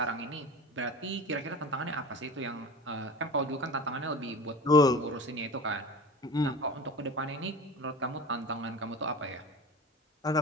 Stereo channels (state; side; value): normal; both; correlation 0.35